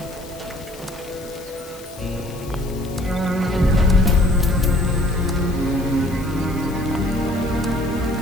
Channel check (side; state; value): left; noise; hiss, 19 dB below the sound